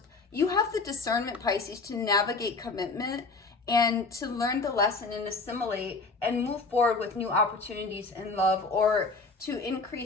You have the discernment, Pisces, to navigate commitment and to learn the lesson and assimilate and move forward with new opportunities in love, or to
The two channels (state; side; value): quieter; right; 3.9 dB